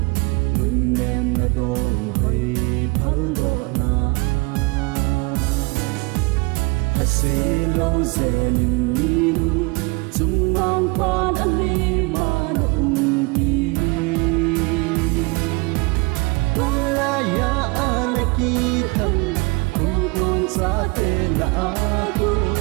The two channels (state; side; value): quieter; left; 27.2 dB